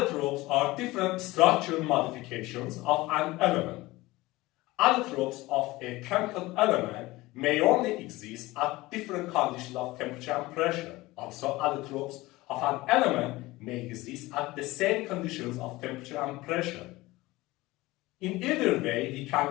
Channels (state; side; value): quieter; right; 19.8 dB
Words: are different structural modifications of an element. Allotropes of a chemical element may only exist at different conditions of temperature and pressure. Also, allotropes of an element may exist at the same conditions of temperature and pressure. In either way, we